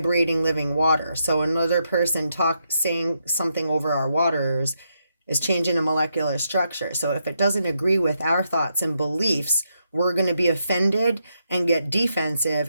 living water. So another person saying something over our waters is changing a molecular structure. So if it doesn't agree with our thoughts and beliefs, we're going to be offended and get defensive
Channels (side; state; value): both; inverted; correlation -0.81